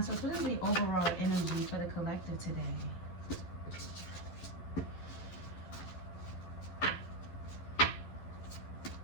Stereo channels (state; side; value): late; right; 11 ms